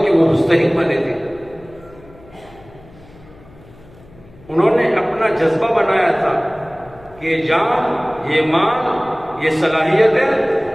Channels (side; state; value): left; noise; hum, 24 dB below the sound